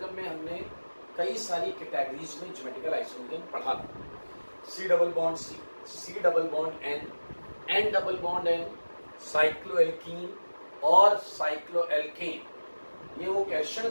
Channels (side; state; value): both; inverted; correlation -1.00